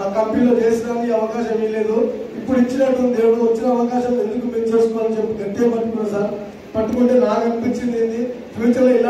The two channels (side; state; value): both; identical; correlation 1.00